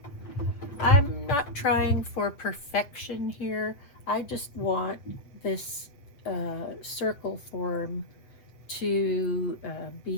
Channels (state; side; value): late; right; 7.2 ms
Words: I'm not trying for perfection here. I just want this circle form to be